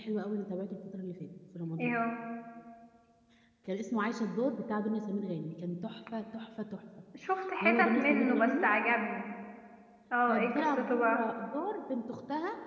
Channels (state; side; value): identical; both; correlation 1.00